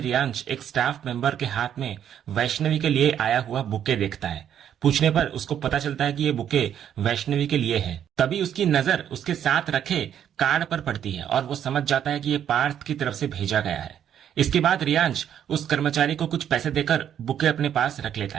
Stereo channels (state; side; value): quieter; left; 9.7 dB